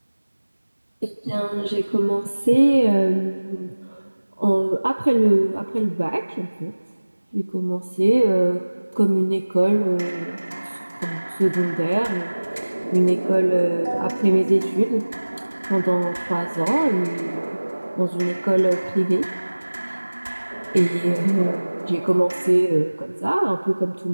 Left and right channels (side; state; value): both; inverted; correlation -1.00